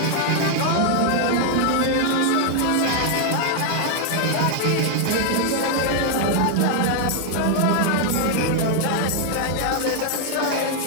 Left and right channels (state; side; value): different; both; correlation 0.00